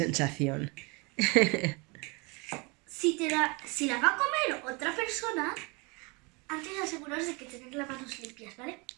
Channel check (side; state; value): left; quieter; 28.6 dB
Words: Si la va a comer otra persona, antes de aseguraros de que tenéis las manos limpias, ¿vale?